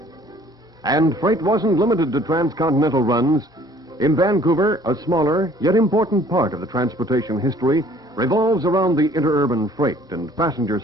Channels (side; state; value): both; normal; correlation 0.56